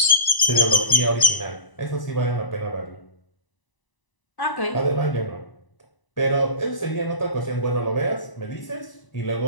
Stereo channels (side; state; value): right; late; 1.0 ms